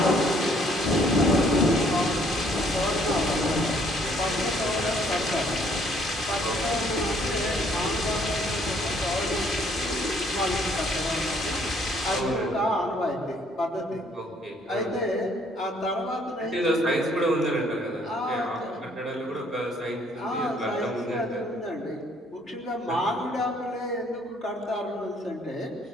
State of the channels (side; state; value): both; normal; correlation 0.63